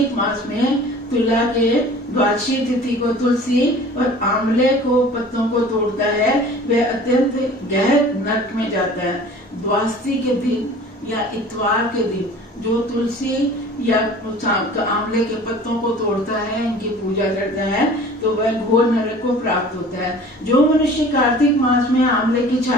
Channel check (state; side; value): normal; both; correlation 0.45